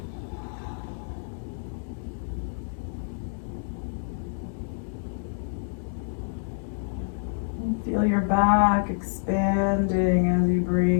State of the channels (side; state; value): right; silent; digital silence